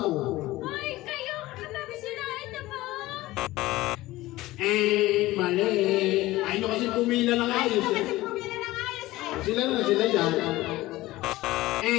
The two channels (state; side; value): quieter; right; 17.9 dB